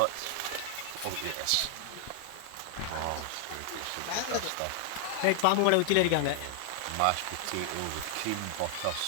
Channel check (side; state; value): both; different; correlation 0.00